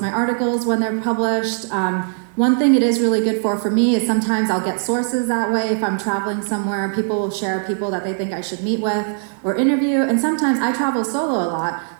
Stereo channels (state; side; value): silent; left; 55 dB below the other